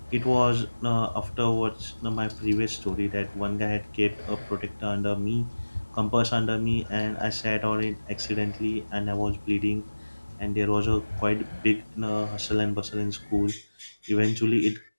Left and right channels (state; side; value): inverted; both; correlation -1.00